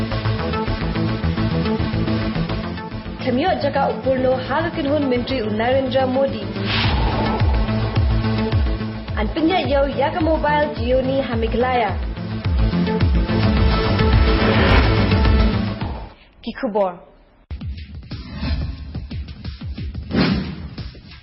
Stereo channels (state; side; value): identical; both; correlation 1.00